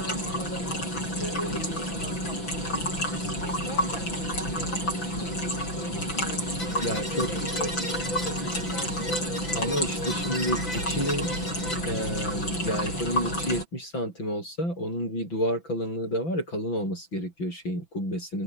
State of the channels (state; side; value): late; right; 6.0 ms